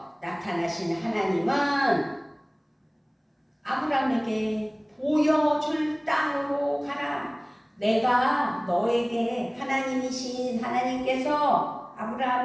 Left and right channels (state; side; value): identical; both; correlation 1.00